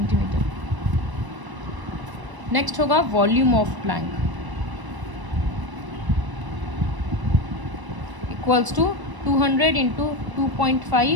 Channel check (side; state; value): left; late; 1.0 ms